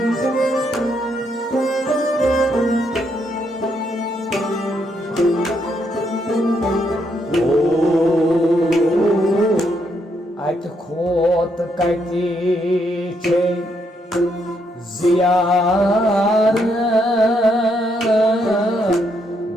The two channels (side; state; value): both; normal; correlation 0.76